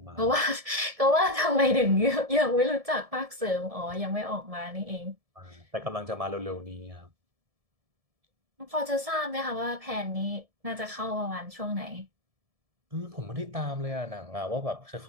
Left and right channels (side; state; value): left; late; 1.7 ms